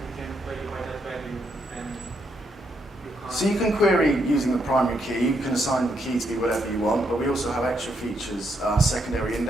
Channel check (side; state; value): both; normal; correlation 0.77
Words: you can query by that value, and you can't. So you can query using the primary key. You can assign the key to be whatever you want, but we also have extra features, secondary